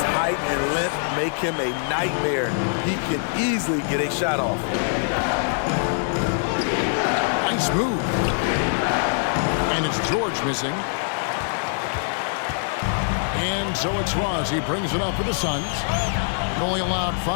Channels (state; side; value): silent; right; 63 dB below the other